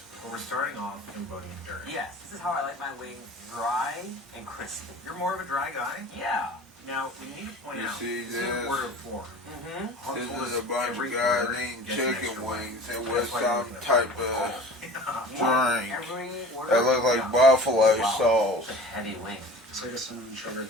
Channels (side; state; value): both; normal; correlation 0.41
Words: but we're starting off Cambodian Dirt. Yes, this is how I like my wings, dry and crispy. You're more of a dry guy. Yeah. Now we need to point You out. see this is this? an order of 4. This is a bunch of guys eating chicken wings and with some type of drink that look like buffalo sauce. It's a heavy wing. It's like a cinnamon sugar